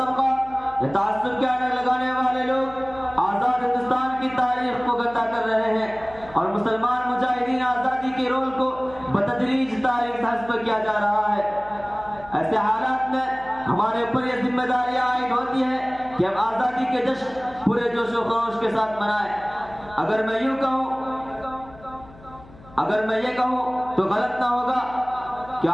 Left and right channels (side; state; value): left; noise; hum, 22 dB below the sound